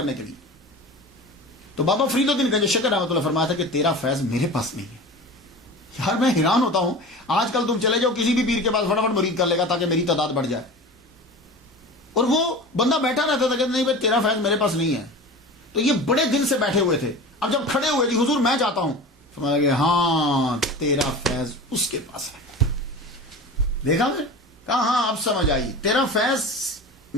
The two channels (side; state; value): both; normal; correlation 0.34